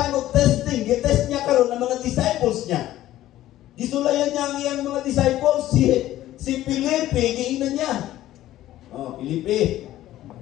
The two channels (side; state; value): right; quieter; 14.2 dB